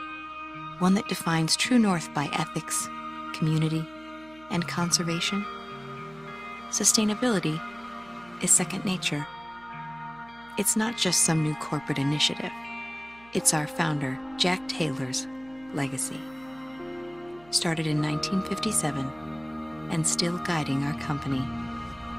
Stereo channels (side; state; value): right; noise; hum, 26 dB below the sound